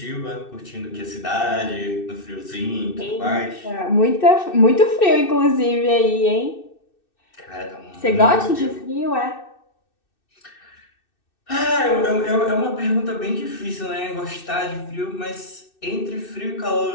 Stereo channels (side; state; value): right; late; 2.6 ms